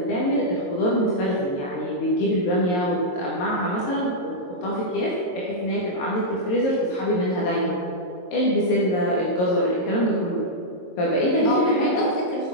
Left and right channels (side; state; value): right; late; 22 ms